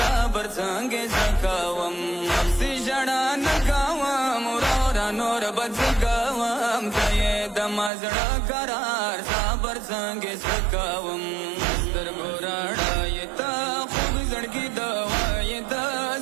संगे सकावम से जड़ा नकावम रोरा नोर बदगवम दये दमाज करार साबर संगे सकावम मस्तर गोराड़ा ये ता खूब जड़की दवा ये ता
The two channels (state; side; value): drops out; left; at 7.9 s